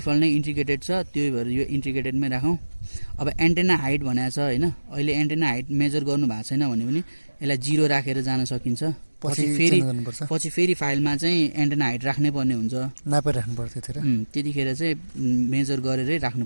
नै इन्टिग्रेटेड छ, त्यही भएर यो इन्टिग्रेटेडमै राखौँ। अब एन्टेना हाइट भनेको छ होइन, अहिले एन्टेना हाइट मेजर गर्नु भएको छैन भने पनि यसलाई 0 राखेर जान सकिन्छ। पछि फेरि फाइलमा चाहिँ एन्टेना हाइट राख्नै पर्ने हुन्छ, नापेर राख्नुपर्छ त्यतिखेर चाहिँ मेजर गरेरै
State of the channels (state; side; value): inverted; both; correlation -1.00